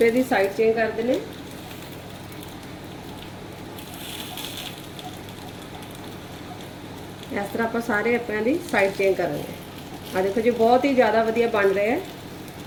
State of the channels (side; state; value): both; identical; correlation 1.00